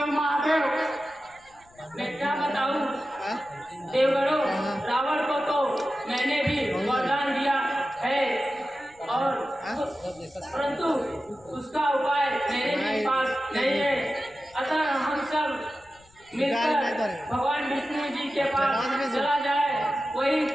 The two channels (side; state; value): left; noise; rumble, 29 dB below the sound